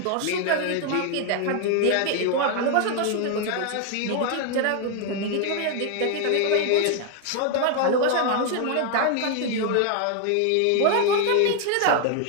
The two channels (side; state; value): both; different; correlation 0.00